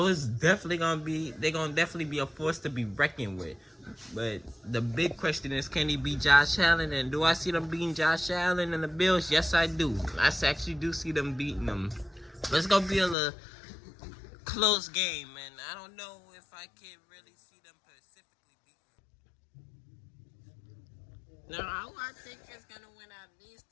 it's definitely gonna definitely be a force to be reckoned with. But the big question is, can he beat Josh Allen? And do I see them beating Josh Allen and the Bills? Yes, I do. I actually do see them beating them. But it's gonna be a little close game, and I don't know if I can really see them specifically beating them. Now, who I think is gonna win out of these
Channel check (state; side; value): drops out; right; at 13.2 s